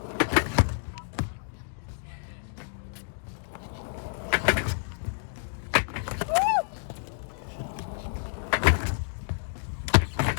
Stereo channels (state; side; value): silent; right; digital silence